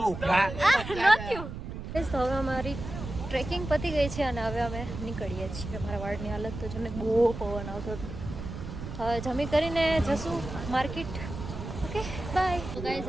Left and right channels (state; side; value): noise; right; rumble, 8 dB below the sound